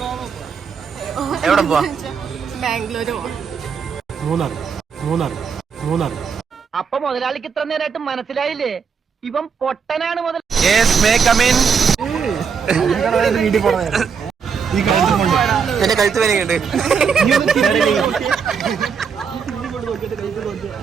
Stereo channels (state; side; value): quieter; left; 6.3 dB